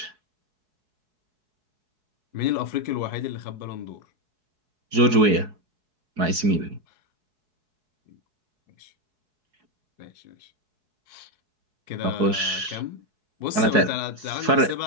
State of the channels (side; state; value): left; late; 4.7 ms